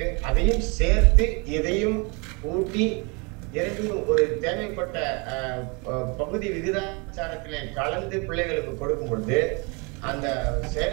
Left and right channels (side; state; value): left; quieter; 30.7 dB